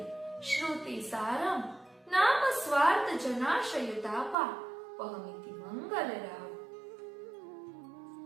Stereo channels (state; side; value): drops out; left; at 4.4 s